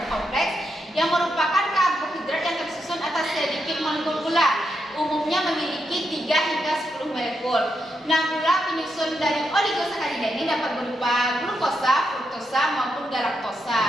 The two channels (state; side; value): normal; both; correlation 0.83